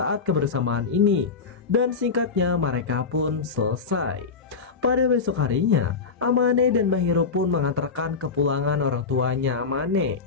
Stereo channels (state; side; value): quieter; right; 5.1 dB